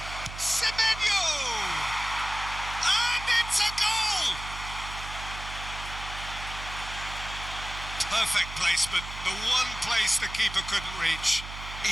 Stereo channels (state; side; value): noise; right; hum, 10 dB below the sound